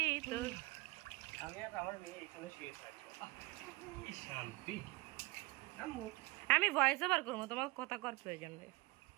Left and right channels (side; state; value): left; quieter; 23.1 dB